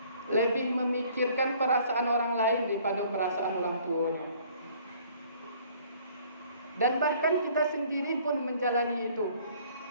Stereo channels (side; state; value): both; inverted; correlation -0.57